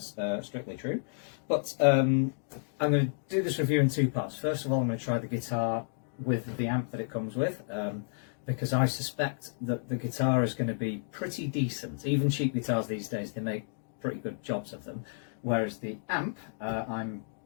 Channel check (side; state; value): right; silent; digital silence